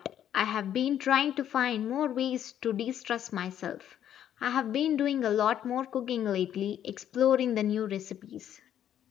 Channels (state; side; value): quieter; right; 10.4 dB